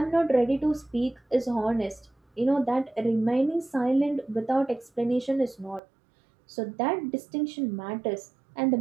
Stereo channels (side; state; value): left; drops out; at 5.8 s